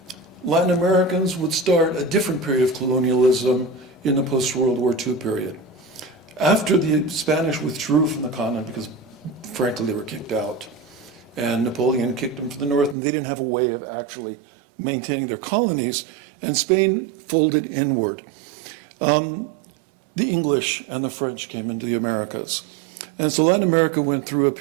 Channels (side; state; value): left; drops out; at 13.0 s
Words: Latin Americans would start a different period of colonialism in the post-World War II period. After the Spanish withdrew from the continent because, frankly, they were kicked out, and Napoleon kicked them from the north, and they didn't have a way of actually maintaining their colonies, and Spain folded inward. The English and the French came into the Americas. And so Latin America went through a